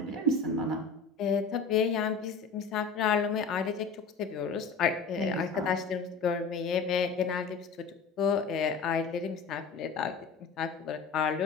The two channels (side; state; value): right; quieter; 4.8 dB